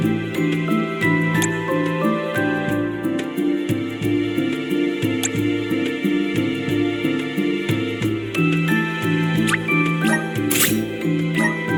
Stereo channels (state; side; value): identical; both; correlation 1.00